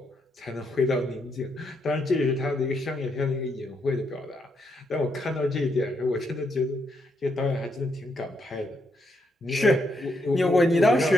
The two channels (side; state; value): both; normal; correlation 0.78